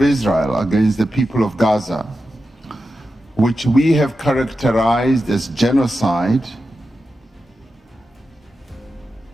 Israel against the people of Gaza, which we have characterized as genocide,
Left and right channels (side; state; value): both; normal; correlation 0.91